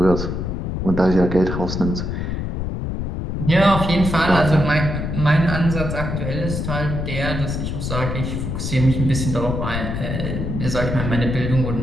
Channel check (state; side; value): noise; left; rumble, 3 dB below the sound